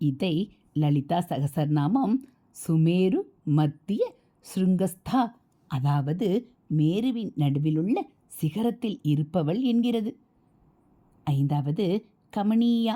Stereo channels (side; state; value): both; identical; correlation 1.00